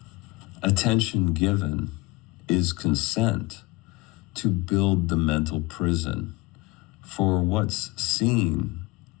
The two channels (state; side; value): quieter; right; 23.0 dB